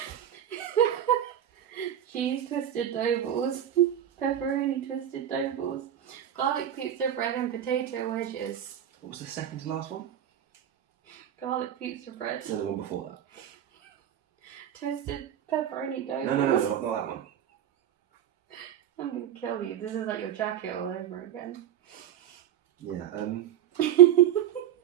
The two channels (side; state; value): left; quieter; 10.4 dB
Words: Cheese twisted dough balls, pepperoni twisted dough balls, garlic pizza bread and potato wedges. What was the second to last one? Garlic pizza bread. No, the one before that. Twisted pepperoni dough No, balls. not that one. I'm gonna kill you. This is like your jacket all over again. Yeah,